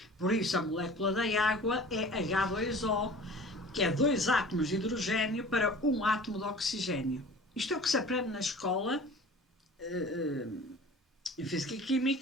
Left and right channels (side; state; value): both; normal; correlation 0.43